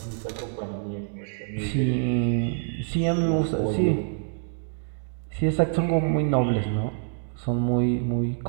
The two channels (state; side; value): silent; left; 61 dB below the other